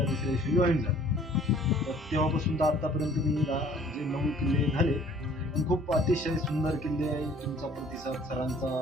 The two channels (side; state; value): both; normal; correlation 0.55